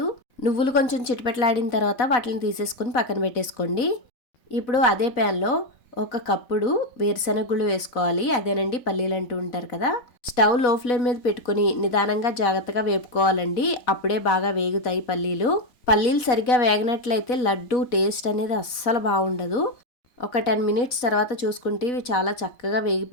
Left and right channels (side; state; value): right; late; 4.1 ms